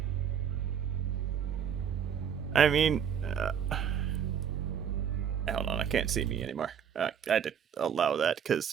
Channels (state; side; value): quieter; left; 8.2 dB